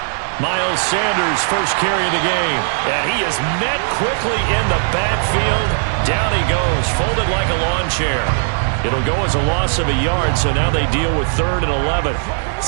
Miles Sanders, first carry of the game. And he is met quickly in the backfield. Down he goes, folded like a lawn chair. It'll go as a loss of a yard, so now they deal with 3rd and 11.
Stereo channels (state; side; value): silent; left; digital silence